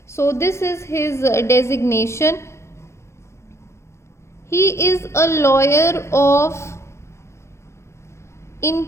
So this is his designation. He is a lawyer of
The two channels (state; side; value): late; right; 0.13 ms